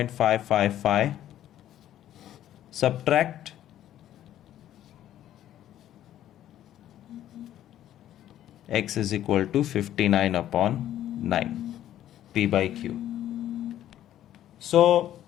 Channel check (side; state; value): right; quieter; 12.0 dB